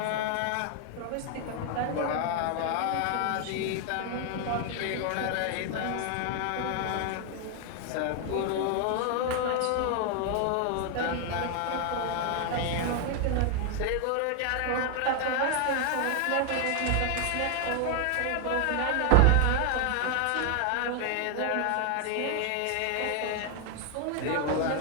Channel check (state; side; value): different; both; correlation 0.00